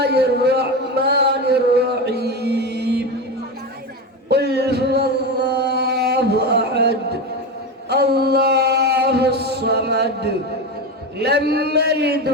الرحمن الرحيم. قل هو الله أحد الله الصمد لم يلد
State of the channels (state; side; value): normal; both; correlation 0.19